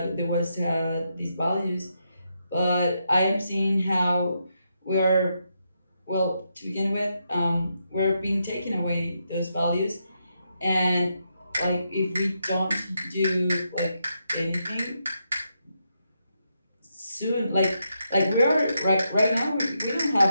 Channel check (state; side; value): inverted; both; correlation -0.82